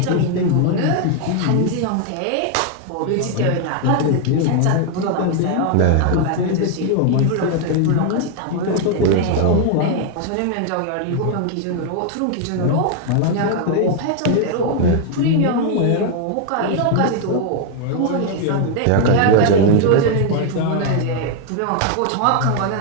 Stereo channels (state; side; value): different; both; correlation 0.00